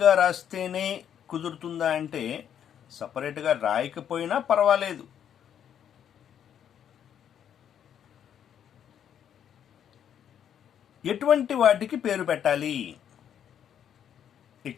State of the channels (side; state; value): right; quieter; 9.2 dB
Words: రాస్తేనే కుదురుతుందా అంటే సపరేట్గా రాయకపోయినా పర్వాలేదు. ఎటువంటి వాటికి పేరు పెట్టాలి?